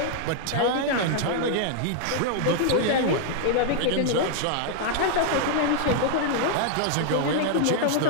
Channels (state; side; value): different; both; correlation 0.00